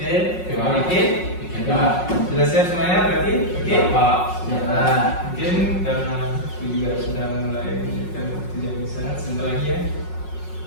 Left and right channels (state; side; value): late; right; 5.5 ms